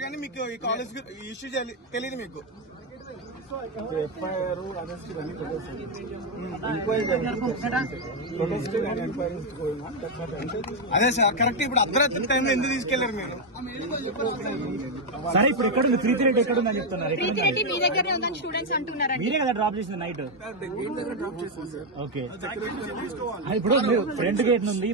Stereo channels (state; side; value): normal; both; correlation 0.02